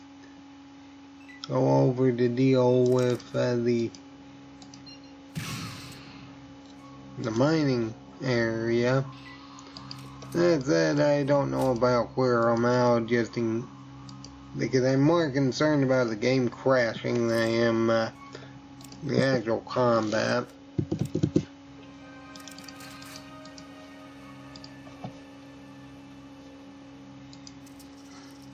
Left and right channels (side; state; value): both; identical; correlation 1.00